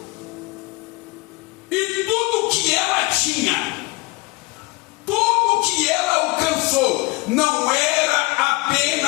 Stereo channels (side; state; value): right; quieter; 24.1 dB